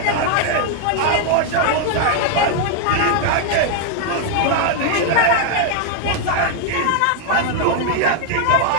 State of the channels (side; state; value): both; different; correlation 0.00